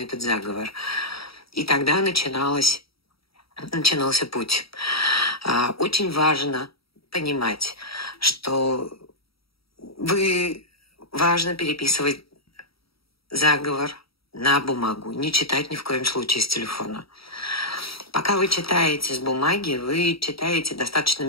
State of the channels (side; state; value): right; late; 0.75 ms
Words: заговор. И тогда начинался путь. Очень важно понимать, что важно переписывать заговор на бумагу, не читать ни в коем случае с телефона. Пока вы читаете с бумаги, вы читаете достаточно